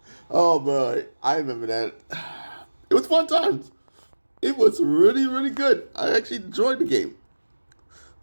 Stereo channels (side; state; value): both; inverted; correlation -1.00